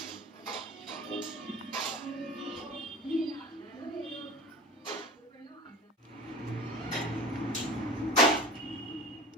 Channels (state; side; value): normal; both; correlation 0.36